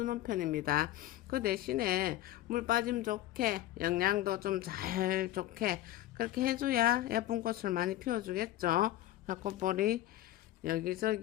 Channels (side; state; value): right; quieter; 14.6 dB